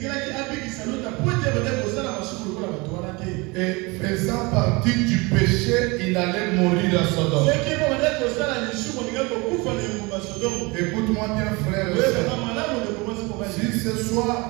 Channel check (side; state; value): left; quieter; 25.8 dB